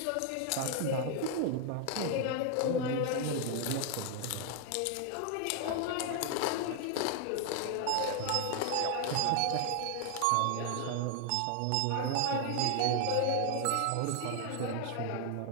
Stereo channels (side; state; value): both; different; correlation 0.00